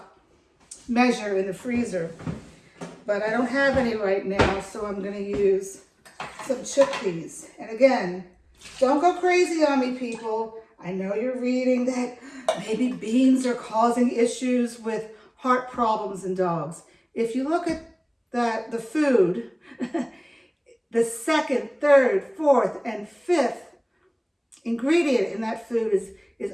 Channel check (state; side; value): identical; both; correlation 1.00